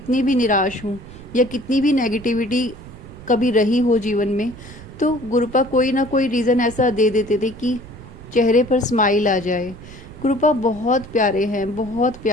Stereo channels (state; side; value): noise; right; rumble, 17 dB below the sound